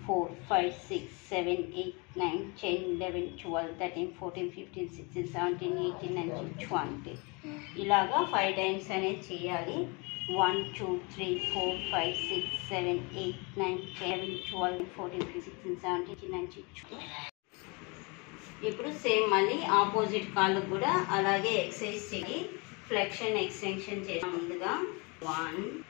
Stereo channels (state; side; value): quieter; right; 29.7 dB